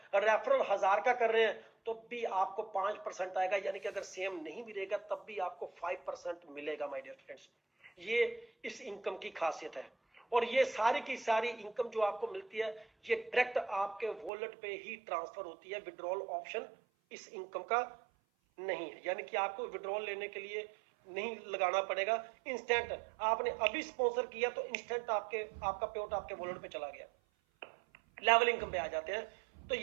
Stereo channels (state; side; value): drops out; left; at 14.3 s